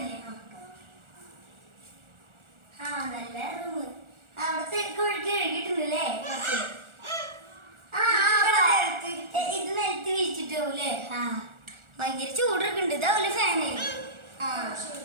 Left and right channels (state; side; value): late; left; 1.4 ms